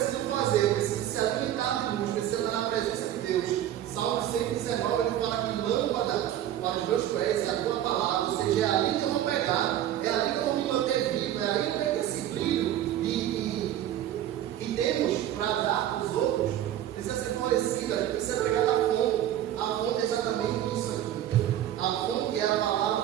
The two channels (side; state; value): left; quieter; 11.9 dB